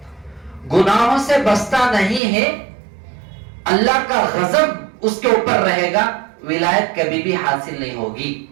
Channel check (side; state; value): left; drops out; at 2.2 s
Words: گناہوں سے بچتا نہیں ہے, اللہ کا غضب اس کے اوپر رہے گا, ولایت کبھی بھی حاصل نہیں ہوگی.